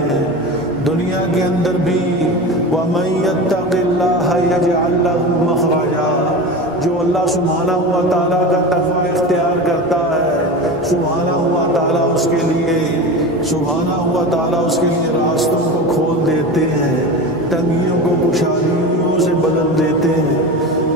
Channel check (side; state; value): both; normal; correlation 0.28